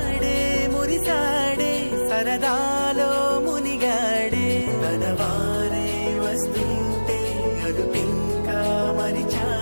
మురి మనవారే వస్తుంటే అదుపింకా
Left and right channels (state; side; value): inverted; both; correlation -1.00